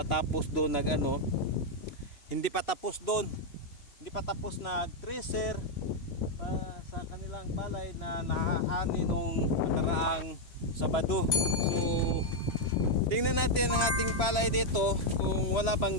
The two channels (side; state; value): right; late; 3.0 ms